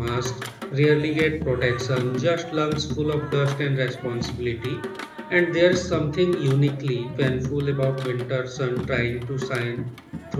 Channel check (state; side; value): identical; both; correlation 1.00